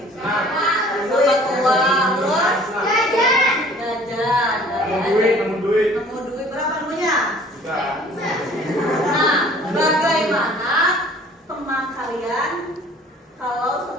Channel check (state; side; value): normal; both; correlation 0.52